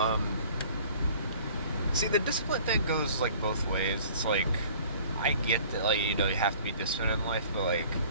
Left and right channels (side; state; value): both; inverted; correlation -0.50